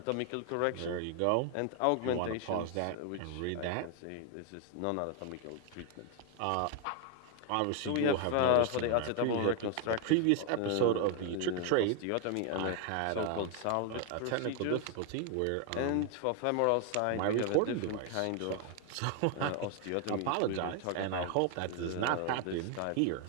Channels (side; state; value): both; different; correlation 0.00